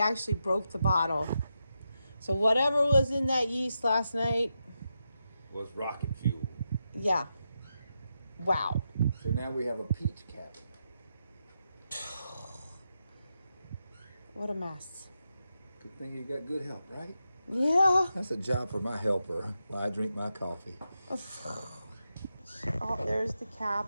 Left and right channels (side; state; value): both; inverted; correlation -0.86